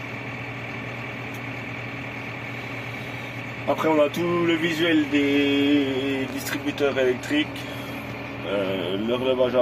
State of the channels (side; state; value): both; identical; correlation 1.00